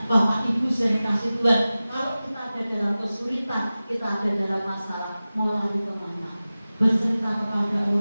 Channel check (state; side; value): inverted; both; correlation -0.97